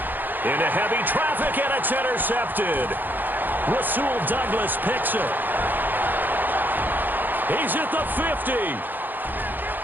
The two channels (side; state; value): left; late; 0.089 ms